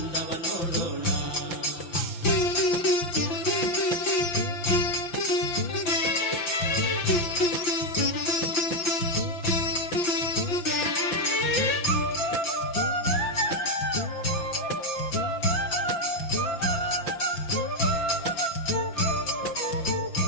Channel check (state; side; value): late; right; 5.9 ms